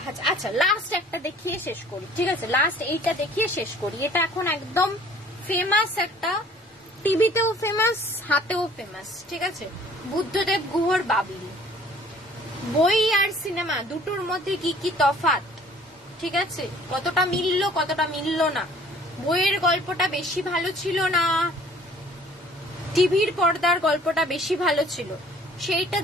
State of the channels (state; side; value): normal; both; correlation 0.54